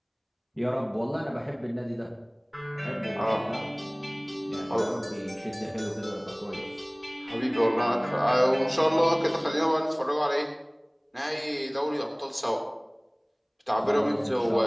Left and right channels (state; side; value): identical; both; correlation 1.00